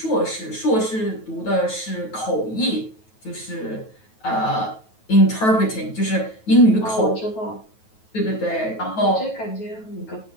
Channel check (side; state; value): right; late; 9.2 ms